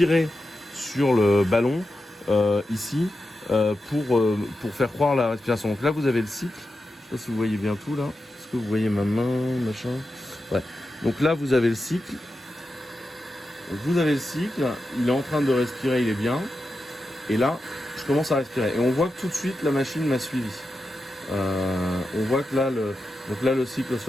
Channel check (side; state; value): both; normal; correlation 0.90